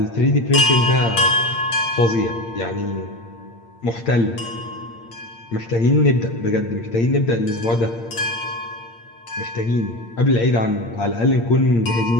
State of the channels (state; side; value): late; right; 8.7 ms